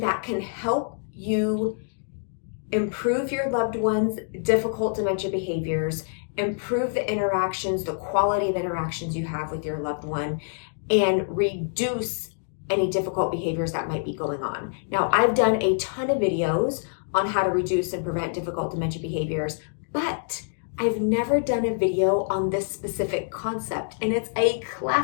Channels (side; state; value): right; silent; digital silence